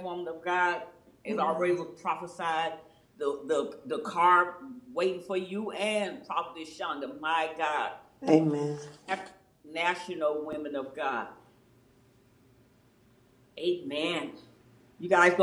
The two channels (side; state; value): both; identical; correlation 1.00